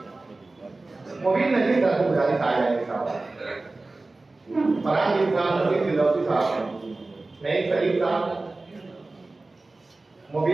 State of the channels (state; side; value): quieter; left; 3.2 dB